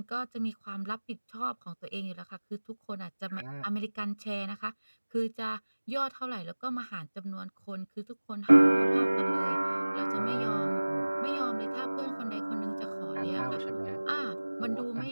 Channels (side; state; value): both; inverted; correlation -1.00